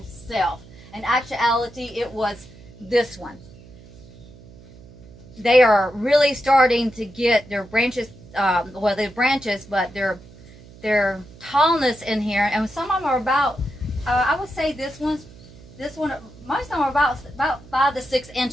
self. In actuality, it was this one. They are really starting to get their branches, well, they're branches, but their tallness in here, and some of them are about, I would say this one, most of them are about 5 to 6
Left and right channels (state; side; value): noise; right; hum, 21 dB below the sound